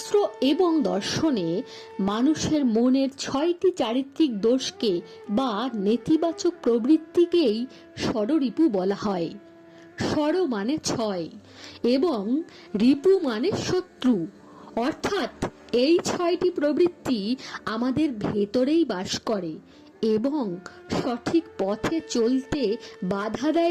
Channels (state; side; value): identical; both; correlation 1.00